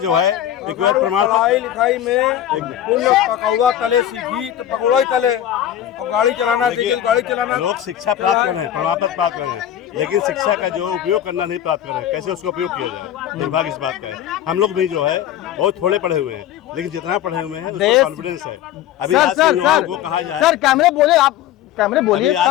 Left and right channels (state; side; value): quieter; right; 11.4 dB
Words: है रिक्वायर्ड प्रमाण पढ़ाई लिखाई में पुण्य पकौड़ा तले सीखी तो पकौड़ा ही तले, और गाड़ी चलाना सीखी तो गाड़ी चलाना। लोग शिक्षा प्राप्त कर रहे हैं, प्रमाण पत्र प्राप्त कर रहे हैं, लेकिन शिक्षा का जो उपयोग करना नहीं प्राप्त कर रहे हैं, कैसे उसका उपयोग किया जाए, दुर्भाग्य इस बात का है। हम लोग भी जो है बहुत थोड़े पढ़े हुए हैं, लेकिन जितना पढ़े हुए हैं उसका कॉन्फिडेंस है। अभी आज के युवाओं को कहा जाए, सर कैमरे बोले, आप कैमरे बोलिए,